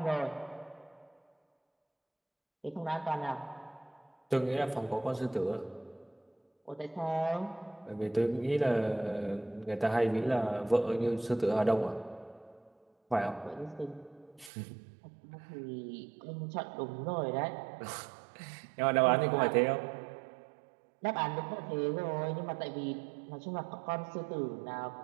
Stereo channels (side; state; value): left; drops out; at 14.5 s